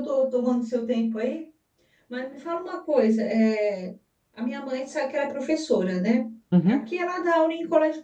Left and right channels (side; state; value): both; identical; correlation 1.00